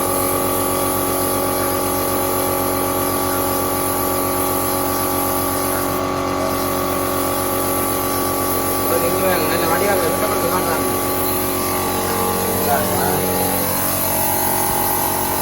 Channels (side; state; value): both; identical; correlation 1.00